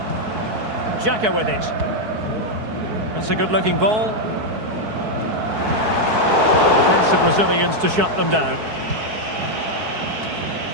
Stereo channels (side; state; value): left; late; 4.6 ms